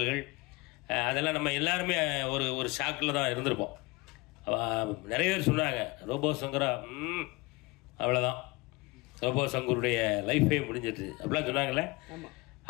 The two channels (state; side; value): quieter; right; 23.8 dB